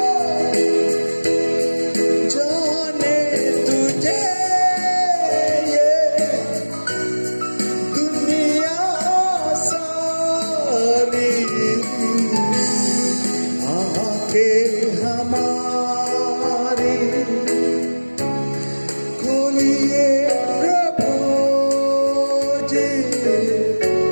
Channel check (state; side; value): inverted; both; correlation -1.00